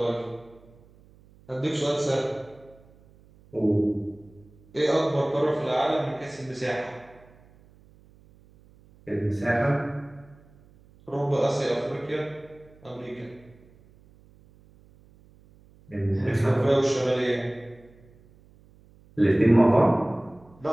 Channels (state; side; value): noise; right; hum, 27 dB below the sound